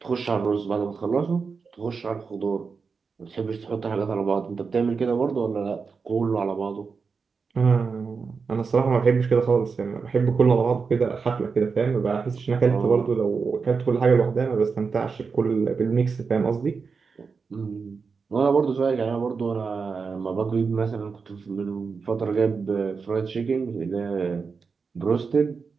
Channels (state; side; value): quieter; left; 5.1 dB